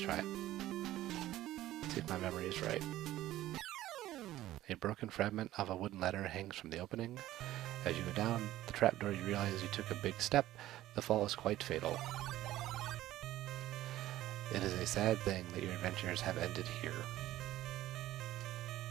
it. See if my memory is right. A broken fragment of a wooden ladder hangs from the opening. As you go down the trapdoor, you realize you took a big step. The fall is quite fatal. It is a sad thing that your adventures have ended here.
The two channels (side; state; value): left; quieter; 14.8 dB